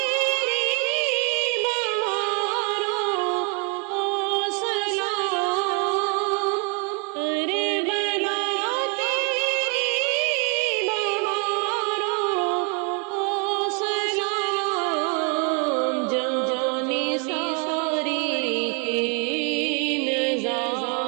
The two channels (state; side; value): quieter; left; 36.5 dB